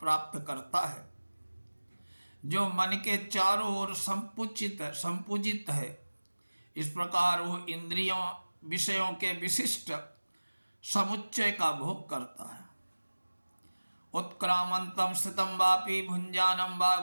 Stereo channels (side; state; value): both; inverted; correlation -1.00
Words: करता है, जो मन के चारों ओर संपूजित है। इस प्रकार वो इंद्रियों विषयों के विशिष्ट समुच्चय का भोग करता है। उत्क्रामंतम स्थितम वापि भुंजानम वा